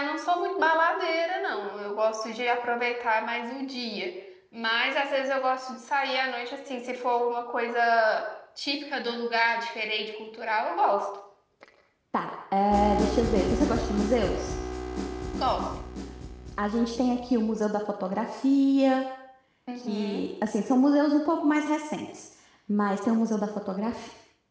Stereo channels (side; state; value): both; identical; correlation 1.00